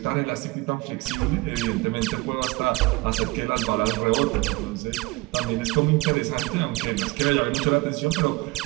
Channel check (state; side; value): quieter; left; 22.9 dB